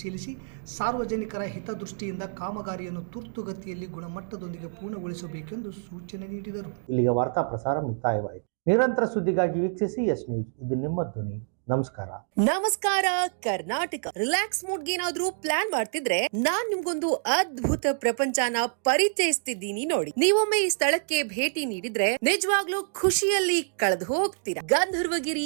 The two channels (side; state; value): left; silent; digital silence